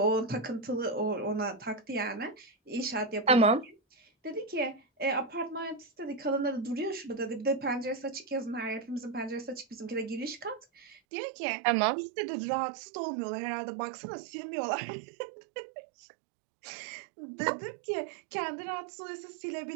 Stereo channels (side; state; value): left; drops out; at 11.0 s